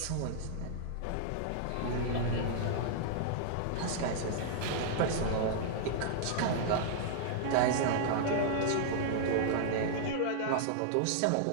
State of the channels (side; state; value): both; different; correlation -0.01